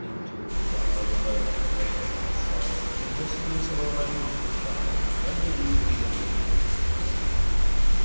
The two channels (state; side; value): inverted; both; correlation -1.00